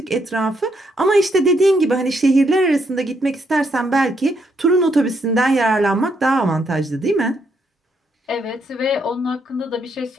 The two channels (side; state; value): both; normal; correlation 0.75